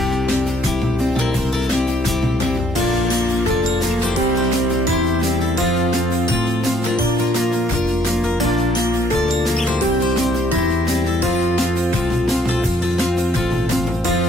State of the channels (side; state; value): both; normal; correlation 0.65